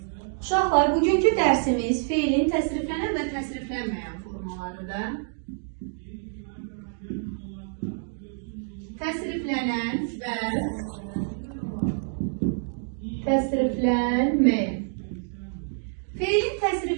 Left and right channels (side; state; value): left; silent; digital silence